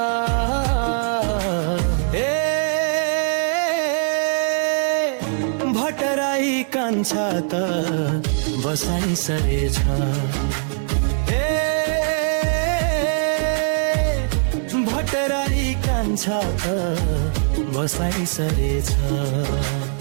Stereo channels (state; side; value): silent; left; digital silence